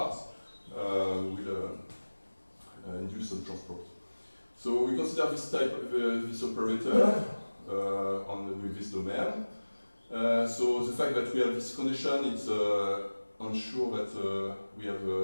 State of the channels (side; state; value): both; inverted; correlation -1.00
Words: will induce some transport. So we consider this type of this operator with this domain. So the fact that we have this condition, it's ensure that